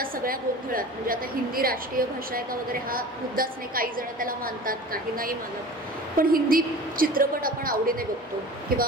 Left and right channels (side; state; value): both; normal; correlation 0.38